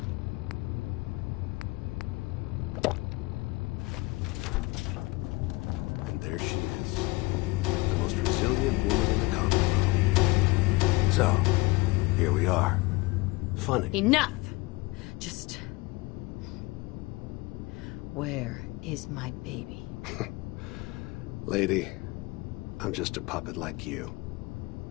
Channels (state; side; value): quieter; right; 23.4 dB